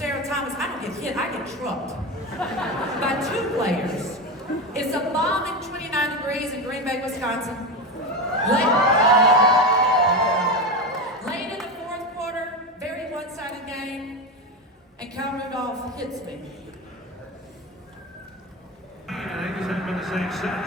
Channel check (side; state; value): both; normal; correlation 0.18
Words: Thomas. I don't get hit, I get trucked by two players. It's a balmy 29 degrees in Green Bay, Wisconsin. Late in the fourth quarter, very one-sided game, and Kyle Rudolph hits me. I think it hasn't been the same